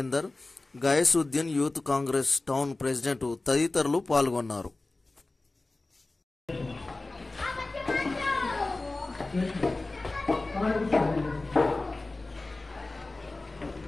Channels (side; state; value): right; quieter; 3.1 dB